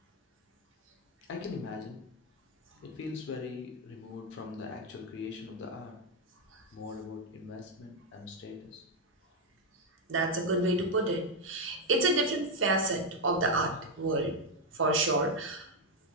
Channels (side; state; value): both; normal; correlation 0.03